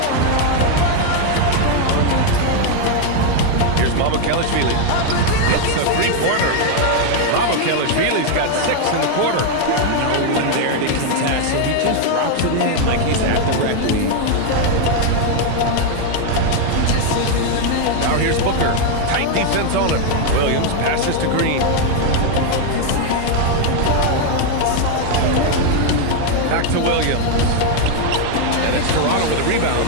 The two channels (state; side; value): different; both; correlation 0.01